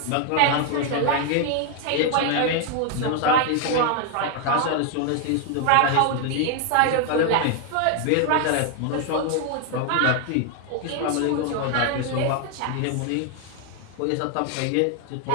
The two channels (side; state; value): both; different; correlation 0.00